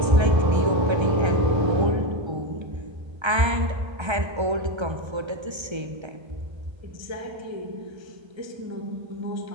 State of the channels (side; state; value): left; late; 1.3 ms